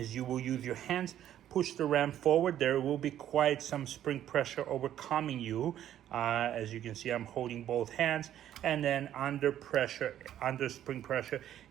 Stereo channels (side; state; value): left; quieter; 11.3 dB